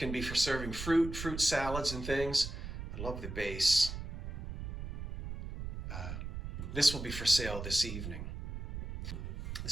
be for serving fruit salads and things. I love the base. This will be for sale this evening.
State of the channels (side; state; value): right; noise; rumble, 7 dB below the sound